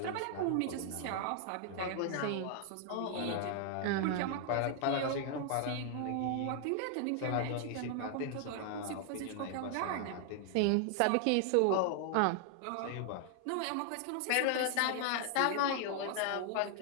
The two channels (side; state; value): both; different; correlation 0.00